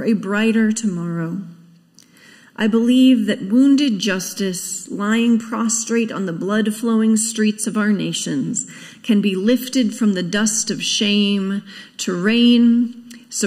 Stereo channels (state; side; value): identical; both; correlation 1.00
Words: a brighter tomorrow. I believe that wounded justice, lying prostrate on the blood-flowing streets of our nations, can be lifted from the dust of shame to reign